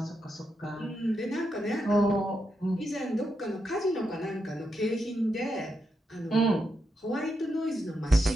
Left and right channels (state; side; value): normal; both; correlation 0.84